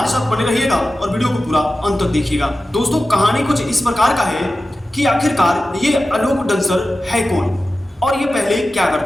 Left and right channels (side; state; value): both; normal; correlation 0.94